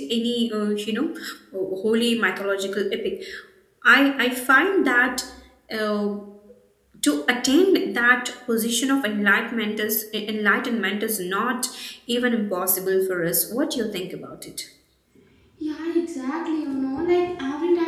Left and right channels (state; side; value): identical; both; correlation 1.00